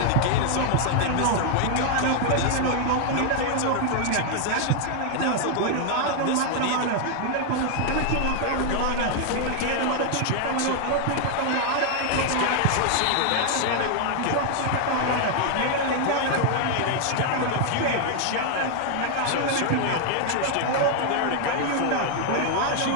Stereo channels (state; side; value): different; both; correlation 0.00